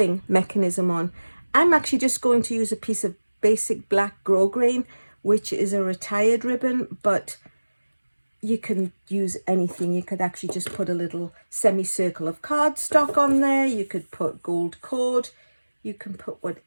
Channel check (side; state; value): both; inverted; correlation -1.00